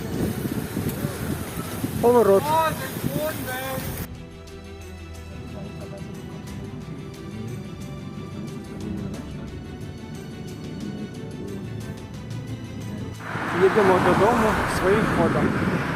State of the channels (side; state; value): both; identical; correlation 1.00